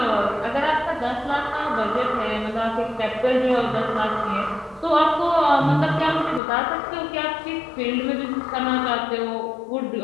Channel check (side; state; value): right; drops out; at 6.4 s